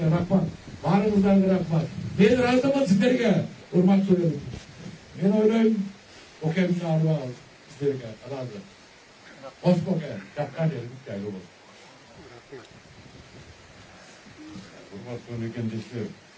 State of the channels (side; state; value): both; identical; correlation 1.00